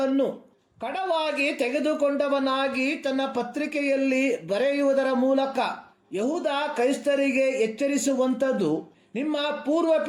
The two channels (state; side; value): identical; both; correlation 1.00